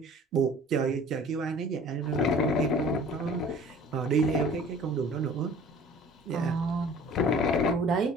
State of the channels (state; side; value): normal; both; correlation 0.47